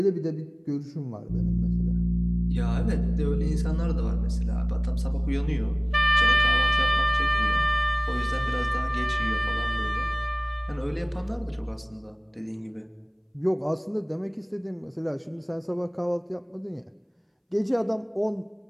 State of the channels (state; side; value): identical; both; correlation 1.00